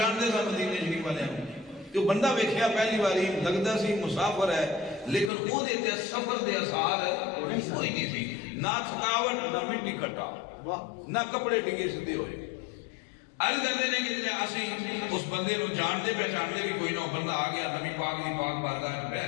سن مدینے شریف والے جو بندہ ویکھیا پہلی باری لگدا سی مسافر ہے لیکن او دے تے سفر دے اثار کوئی نہیں سی نہ تھکاوٹ نہ مٹی کٹا نہ کپڑے ڈگے سیدھے ہوئے عرض کرتے ہیں کہ اسی اس بندے نو جانتے پہچانتے بھی کوئی نہ بندہ آ گیا نبی پاک دی پاک بارگاہ وچ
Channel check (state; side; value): drops out; right; at 5.3 s